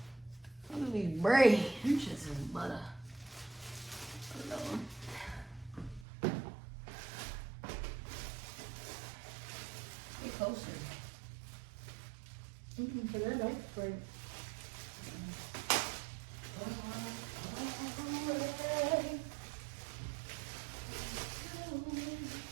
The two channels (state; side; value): drops out; left; at 6.1 s